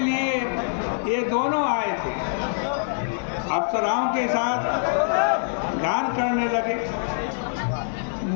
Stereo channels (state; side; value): silent; right; digital silence